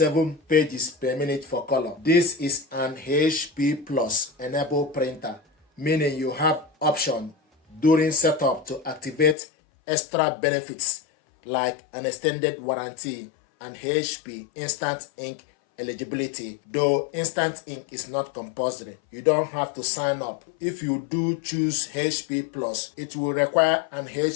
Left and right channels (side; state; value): right; drops out; at 9.3 s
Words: pages per minute for color. This is an HP Plus enabled printer, meaning you have option during setup to activate extra benefits like an extended warranty and HP Instant Ink eligibility. Though Instant Ink is not compulsory, you don't have to sign up. If you do choose HP Plus, it will require an